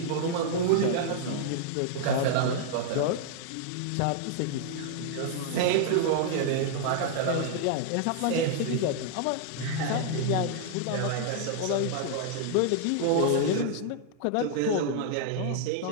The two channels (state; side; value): different; both; correlation -0.01